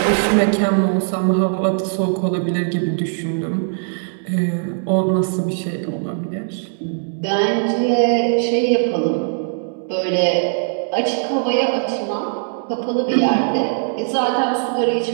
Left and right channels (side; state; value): left; silent; digital silence